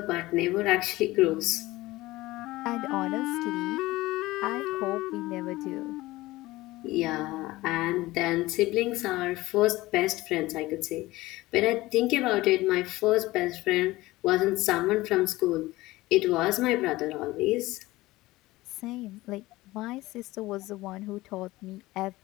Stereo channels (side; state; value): right; quieter; 18.8 dB